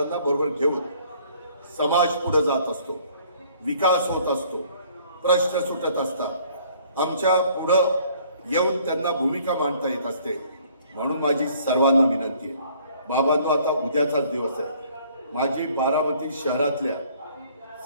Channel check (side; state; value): both; inverted; correlation -0.59